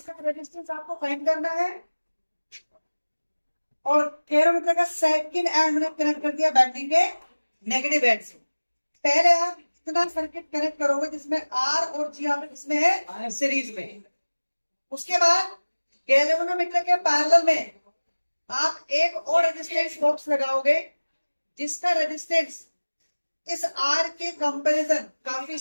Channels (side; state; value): both; inverted; correlation -1.00